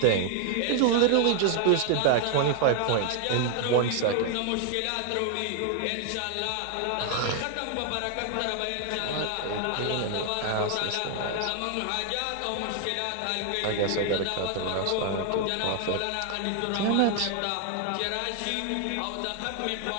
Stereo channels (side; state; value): both; different; correlation 0.00